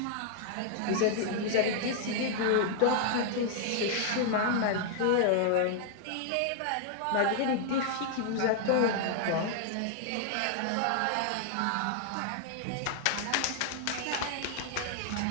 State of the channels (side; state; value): both; different; correlation 0.00